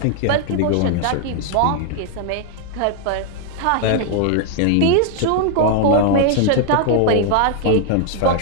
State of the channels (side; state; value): both; different; correlation 0.00